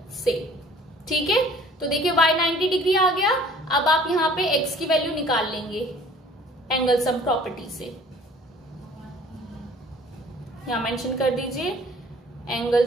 से। ठीक है, तो देखिए y 90 डिग्री आ गया। अब आप यहां पे x की वैल्यू निकाल लेंगे एंगल सम प्रॉपर्टी से। यहां मेंशन कर दीजिए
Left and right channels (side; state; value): both; normal; correlation 0.52